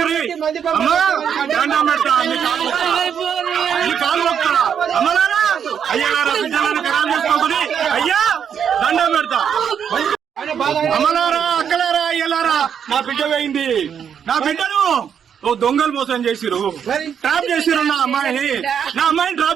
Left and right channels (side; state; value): left; quieter; 8.0 dB